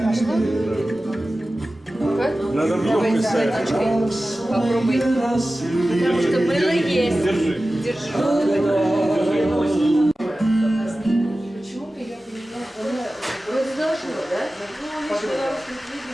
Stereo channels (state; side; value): normal; both; correlation 0.95